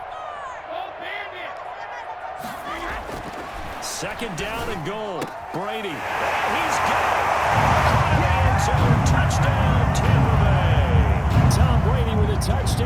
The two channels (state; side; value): identical; both; correlation 1.00